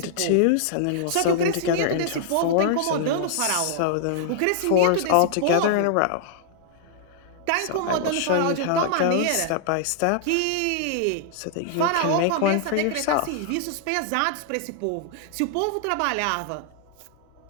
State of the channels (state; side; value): different; both; correlation -0.01